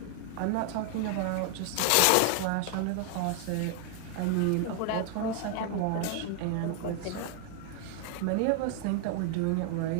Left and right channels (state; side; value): different; both; correlation 0.00